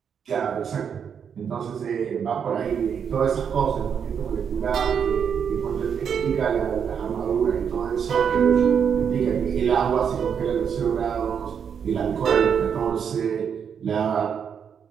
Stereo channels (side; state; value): left; quieter; 7.4 dB